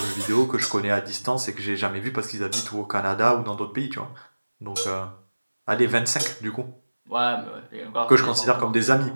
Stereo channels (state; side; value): inverted; both; correlation -1.00